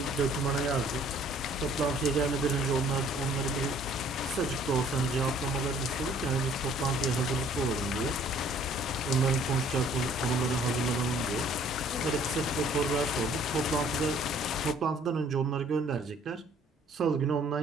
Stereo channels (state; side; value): normal; both; correlation 0.57